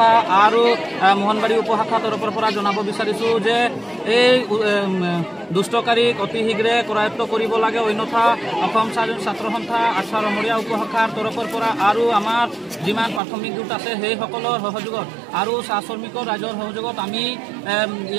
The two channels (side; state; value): left; drops out; at 13.2 s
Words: আৰু মোহনবাৰী উপশাখা তৰফৰ পৰা জনাব বিচাৰিছোঁ যে এই দুষ্টকাৰীক অতি শীঘ্ৰে কৰায়ত্ব কৰিব লাগে, অন্যথা অসম ছাত্ৰ সন্থা আঠছা ৰমৰীয়া উপশাখাৰ তৰফৰ পৰা আৰু আমাৰ যিমান প্ৰাথমিক গোট আছে সেইসকলৰ সহযোগত আৰু চাহ শ্ৰমিকৰ ৰাইজৰ সহযোগত আমি